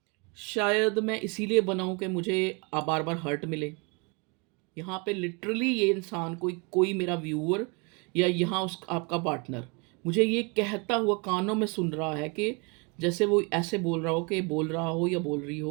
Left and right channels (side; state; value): left; quieter; 31.4 dB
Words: शायद मैं इसीलिए बना हूँ कि मुझे बार बार हर्ट मिले। यहाँ पे लिटरली ये इंसान, कोई कोई मेरा व्यूअर या यहाँ उस आपका पार्टनर मुझे ये कहता हुआ कानों में सुन रहा है कि जैसे वो ऐसे बोल रहा हो, कि बोल रहा हो या बोल रही